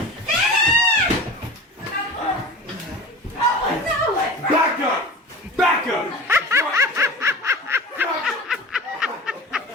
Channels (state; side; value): normal; both; correlation 0.36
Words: Back up! Back up!